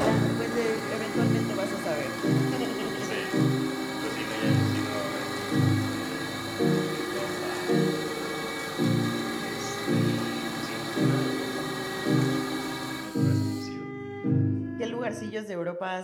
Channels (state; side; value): identical; both; correlation 1.00